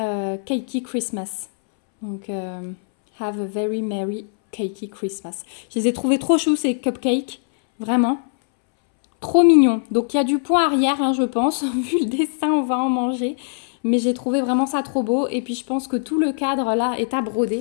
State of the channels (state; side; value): silent; right; 64 dB below the other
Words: Christmas. Donc... Have a very merry cakey Christmas. Je les ai trouvés trop choux ces cupcakes. Vraiment. Trop mignons. Donc il y a du point arrière, hein, je pense. Vu le dessin, on va en manger. Mais j'ai trouvé vraiment ça trop beau. Et puis je pense que tout le cadre là est à broder.